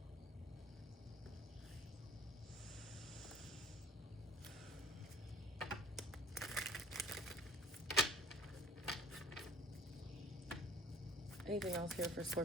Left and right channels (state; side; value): normal; both; correlation 0.51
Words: Anything else here for